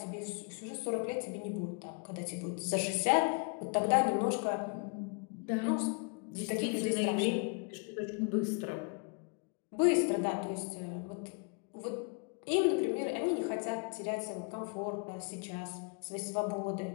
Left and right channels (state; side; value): quieter; right; 36.0 dB